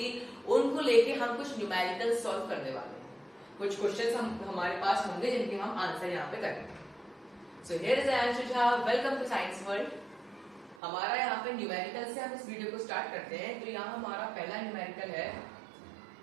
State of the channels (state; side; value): drops out; left; at 10.8 s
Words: उनको लेके हम कुछ न्यूमेरिकल सॉल्व करने वाले हैं। कुछ क्वेश्चंस हमारे पास होंगे जिनके हम आंसर यहाँ पे करेंगे। So here is Anshu Jha. Welcome to Science World. हमारा यहाँ पे न्यूमेरिकल से हम इस वीडियो को स्टार्ट करते हैं। तो यहाँ हमारा पहला न्यूमेरिकल है,